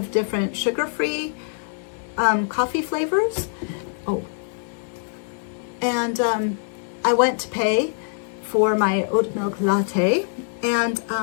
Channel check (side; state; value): right; silent; digital silence